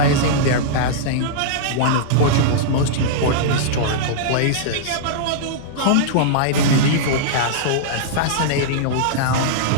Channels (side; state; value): both; different; correlation -0.02